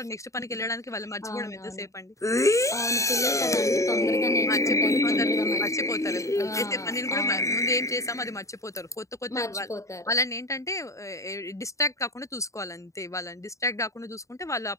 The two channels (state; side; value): late; right; 0.15 ms